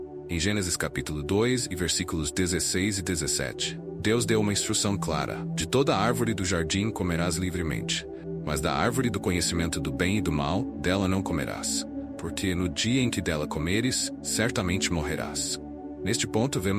Em Gênesis capítulo 2 e versículos 16 e 17, Deus deu uma instrução clara: de toda árvore do jardim comerás livremente, mas da árvore do conhecimento do bem e do mal, dela não comerás, porque no dia em que dela comeres, certamente morrerás. Neste ponto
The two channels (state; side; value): identical; both; correlation 1.00